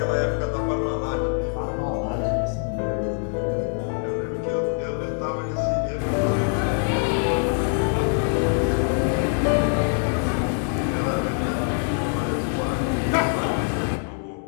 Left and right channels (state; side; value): silent; right; 60 dB below the other